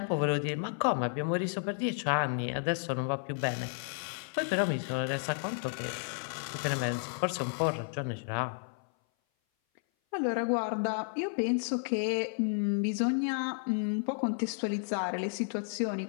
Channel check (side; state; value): right; silent; 56 dB below the other